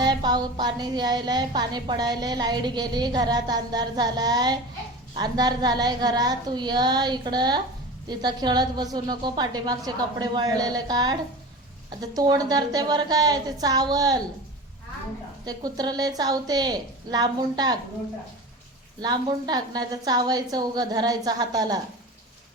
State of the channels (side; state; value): both; normal; correlation 0.32